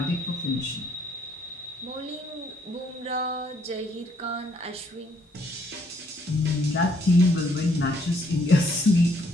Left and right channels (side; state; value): both; normal; correlation 0.68